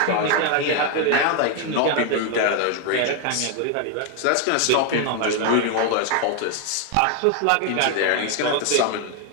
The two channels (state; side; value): different; both; correlation 0.01